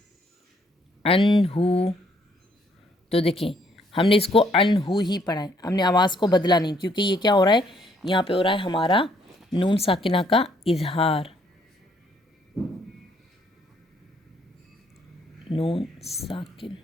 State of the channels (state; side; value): normal; both; correlation 0.68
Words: انہو، تو دیکھیں ہم نے اس کو انہو ہی پڑھا ہے، ہم نے آواز کو بدلا نہیں، کیونکہ یہ کیا ہو رہا ہے؟ یہاں پہ ہو رہا ہے ہمارا نون ساکنہ کا اظہار، نون ساکن۔